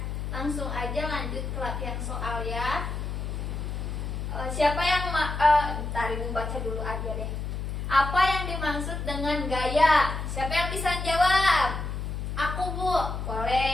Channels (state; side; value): noise; left; hum, 4 dB below the sound